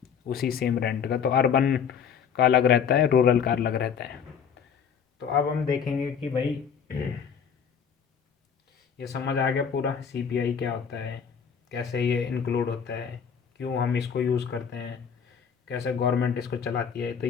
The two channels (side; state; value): right; quieter; 7.2 dB